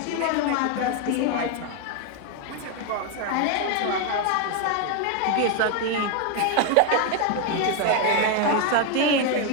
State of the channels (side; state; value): both; different; correlation 0.01